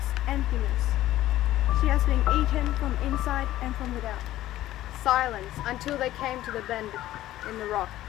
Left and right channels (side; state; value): right; quieter; 14.4 dB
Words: emptiness. She has been eaten from inside and from without. Silence until they came to the bend in the rock,